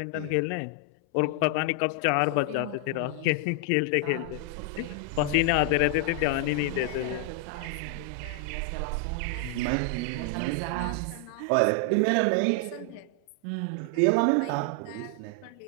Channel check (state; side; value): different; both; correlation 0.00